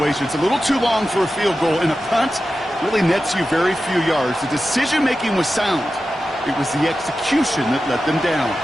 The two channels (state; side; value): normal; both; correlation 0.93